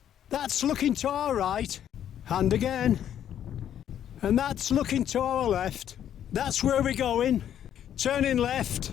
That's looking to our right, and again. And that's looking to our left. That's where we're going. Turning left,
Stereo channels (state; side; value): quieter; right; 10.1 dB